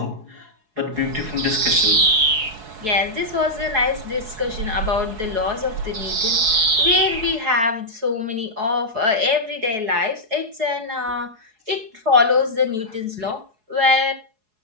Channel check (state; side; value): late; left; 4.7 ms